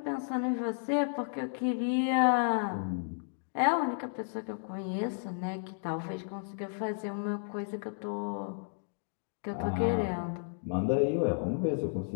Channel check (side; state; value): right; silent; digital silence